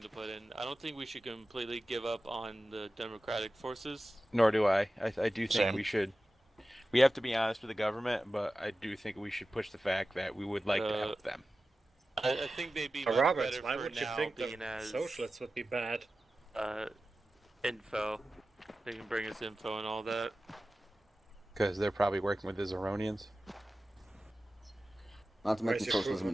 to put in. I don't think we should completely give up on the democratic forces. Nor do I. I do think Same. we should. We have to be honest with the government, but I do think we should push the fact that we would like to help them. I think they'd be much Roberts, better why for would you now think the being as socialists would be bad? Info. They can bring us info and all that. Because they're probably working with the Zeronians. Not to mention Where's your proof socialism of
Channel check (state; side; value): normal; both; correlation 0.94